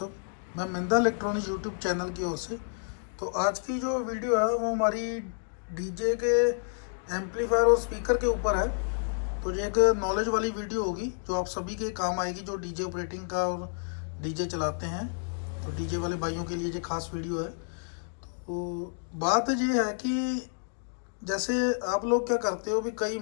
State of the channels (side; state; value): right; silent; digital silence